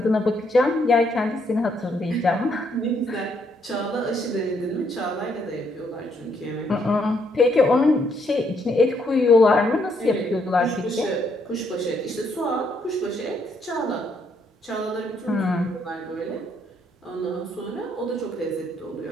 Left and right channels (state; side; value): normal; both; correlation 0.72